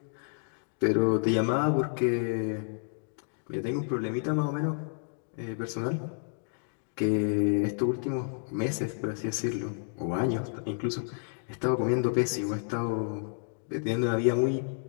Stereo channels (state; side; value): silent; right; digital silence